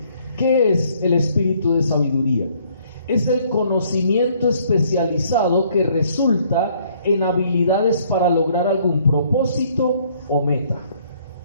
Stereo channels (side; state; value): both; inverted; correlation -0.63